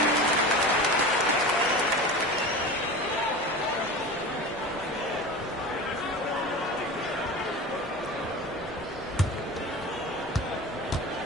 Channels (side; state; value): both; normal; correlation 0.31